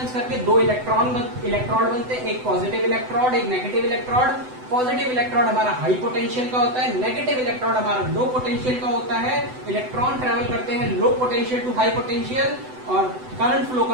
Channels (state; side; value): late; left; 7.9 ms